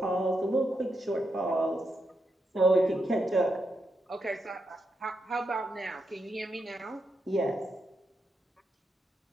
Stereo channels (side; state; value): both; normal; correlation 0.83